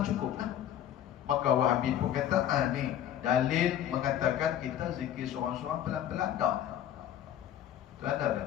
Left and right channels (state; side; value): quieter; right; 10.9 dB